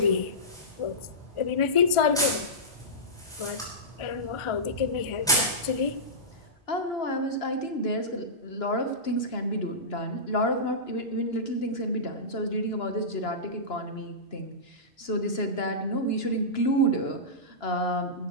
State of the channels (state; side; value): normal; both; correlation -0.17